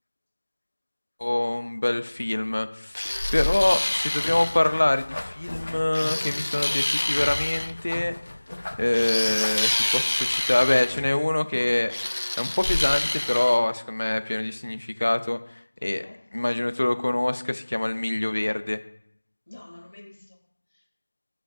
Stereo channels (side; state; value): both; inverted; correlation -1.00